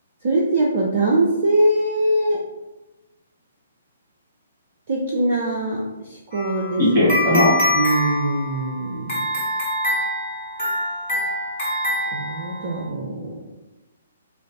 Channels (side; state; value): both; inverted; correlation -0.58